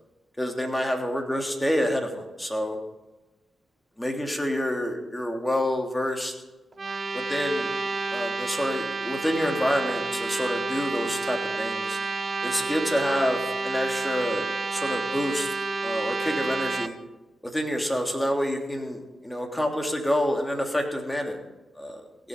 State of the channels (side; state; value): both; normal; correlation 0.92